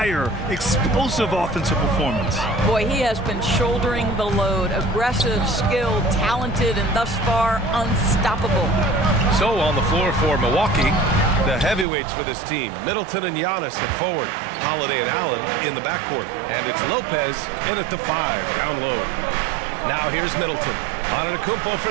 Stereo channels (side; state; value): left; drops out; at 11.9 s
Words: Explosive offensive performance. Boy, he has been shouldering the load. Aggressive, skilled, talented, and thus far unstoppable. So on the floor for Milwaukee, the heavyweights for this team, Middleton and Giannis at forward, Holiday and Allen in the backcourt, and it's Lopez in at the 5 down low. Now here's Middleton. Antetokounmpo